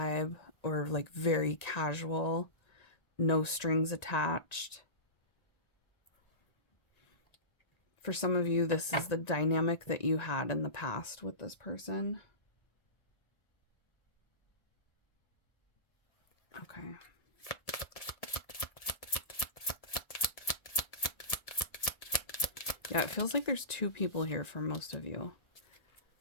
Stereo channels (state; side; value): late; right; 1.7 ms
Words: or like very casual, no strings attached. For some of you, this is the dynamic that you had in the past with this person. Okay. Yeah, it feels like there's two people here for most of you.